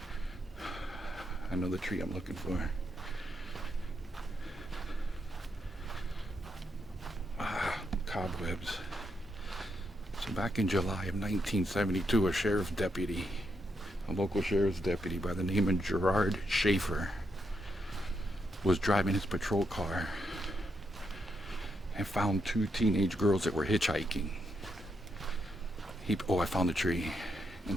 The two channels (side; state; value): both; normal; correlation 0.80